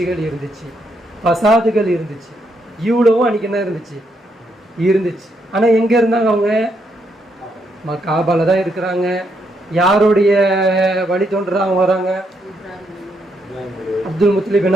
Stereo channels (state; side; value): normal; both; correlation 0.77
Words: இருந்துச்சு, பசாதுகள் இருந்துச்சு. இவ்வளவும் அன்றைக்கி என்ன இருந்துச்சு. ஆனால் எங்கே இருந்தாங்க அவங்க? காபால தான் இருக்கிறாங்க. யாருடைய வழி தோன்றா அவங்க வராங்க? அப்துல் முத்தலிப்